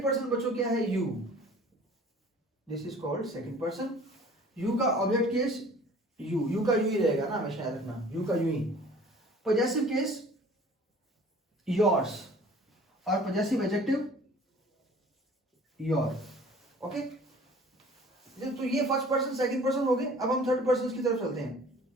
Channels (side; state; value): both; normal; correlation 0.49